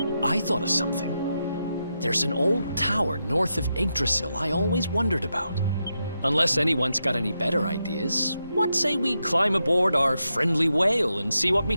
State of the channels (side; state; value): both; inverted; correlation -0.86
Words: I thought of something. There's an old tower north of Yggdrasil I always wondered about. Unless anyone's got any better ideas, what say we climb aboard our friendly whale and see what we